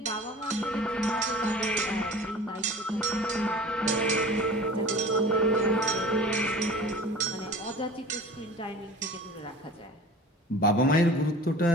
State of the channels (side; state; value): both; normal; correlation 0.41